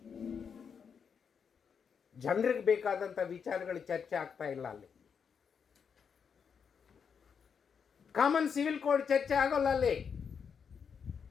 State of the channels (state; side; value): quieter; right; 6.7 dB